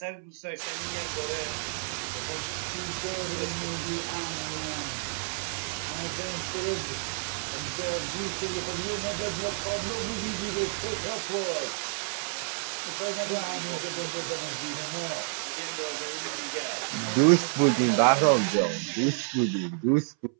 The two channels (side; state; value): left; silent; 58 dB below the other